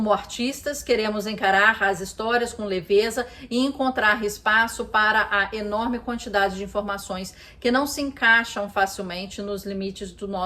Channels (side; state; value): both; identical; correlation 1.00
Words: artistas, queremos encarar as histórias com leveza e encontrar espaço para a enorme quantidade de informações que não se encaixam facilmente nos limites do